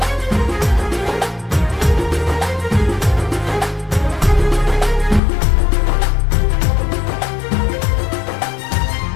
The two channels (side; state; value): right; drops out; at 5.2 s